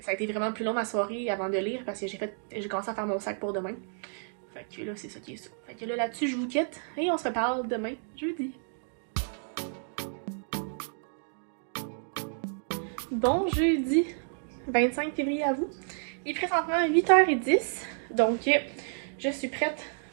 a été vraiment plus long ma soirée avant de lire parce que j'ai commencé à faire mon sac pour demain. Fait que là, c'est ça qui est ça. Fait que là-dessus, je vous quitte et on se reparle demain, jeudi. Bon jeudi 25 février à vous. Il est présentement 8h10, donc je suis prête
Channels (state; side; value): silent; left; digital silence